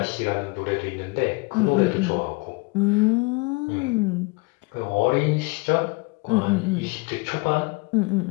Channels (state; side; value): quieter; right; 26.6 dB